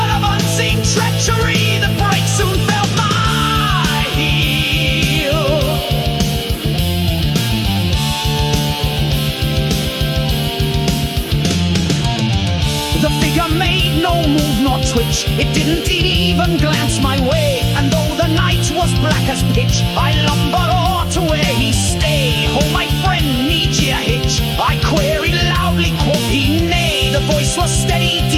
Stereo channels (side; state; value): both; identical; correlation 1.00